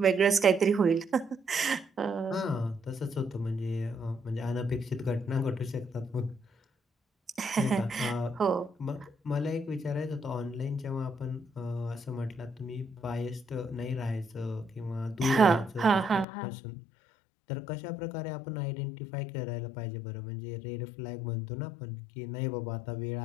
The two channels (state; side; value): drops out; right; at 16.2 s